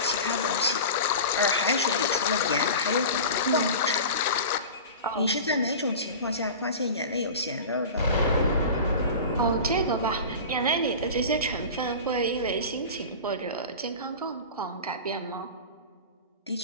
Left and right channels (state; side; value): inverted; both; correlation -0.33